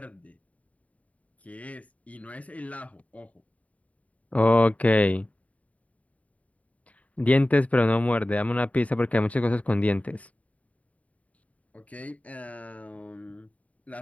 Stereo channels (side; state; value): right; late; 0.068 ms